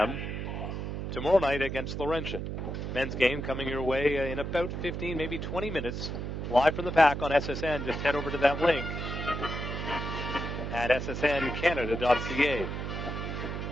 tomorrow night against Laurentian. Men's game coming your way in about 15, maybe 20 minutes. Live from the Pack on SSN. Just head over to that link at ssncanada.ca.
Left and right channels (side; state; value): right; noise; hum, 4 dB below the sound